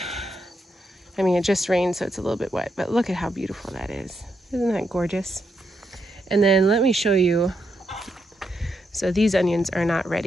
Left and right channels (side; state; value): both; normal; correlation 0.81